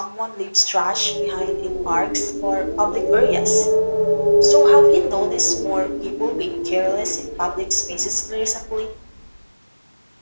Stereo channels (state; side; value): inverted; both; correlation -1.00